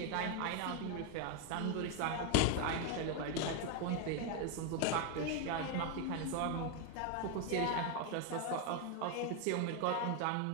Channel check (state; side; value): different; both; correlation 0.01